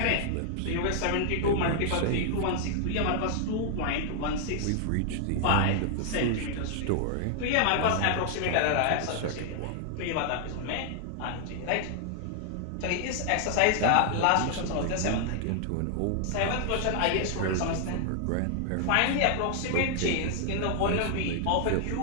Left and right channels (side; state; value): both; different; correlation 0.00